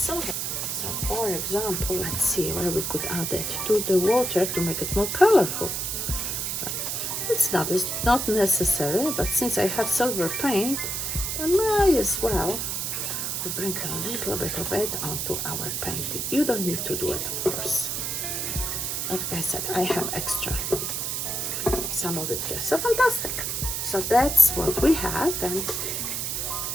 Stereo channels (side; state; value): right; noise; hiss, 2 dB below the sound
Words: So for example, let's see where we could add it to the water to make it more colorful. It's not necessary, but since I have silver paint, I might as well bring a little bit of it onto our painting. You don't need to do it, of course. Like I said, I have extra, some of it here. So fantastic. So that's what we have, and